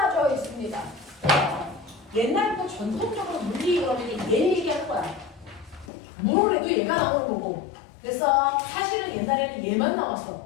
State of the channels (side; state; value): right; drops out; at 5.9 s